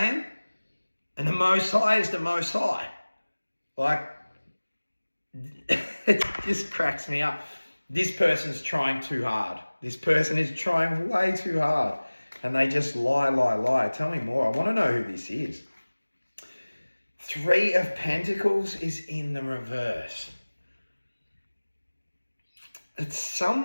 And the Most High is the Most High. Like, it just cracks me up. This person's trying too hard. This person is trying way too hard. And they just lie. Tell me more. I want to know who this is. Three of Pentacles is in the reverse. It's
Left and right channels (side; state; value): both; inverted; correlation -1.00